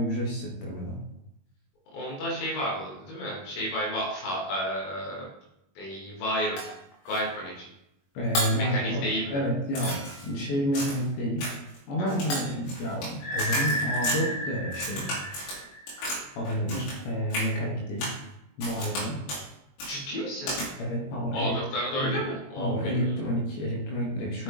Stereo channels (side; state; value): right; late; 21 ms